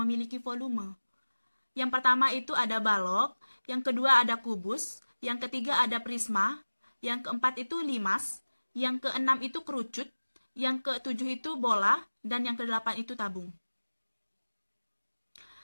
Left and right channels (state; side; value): inverted; both; correlation -1.00